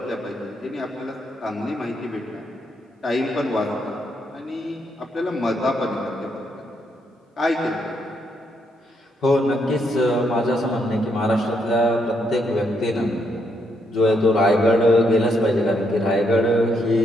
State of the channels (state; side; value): normal; both; correlation 0.76